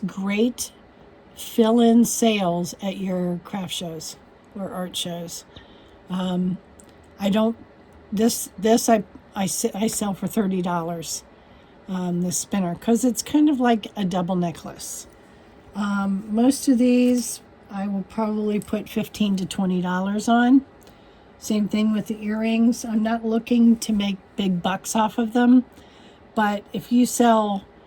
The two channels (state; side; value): identical; both; correlation 1.00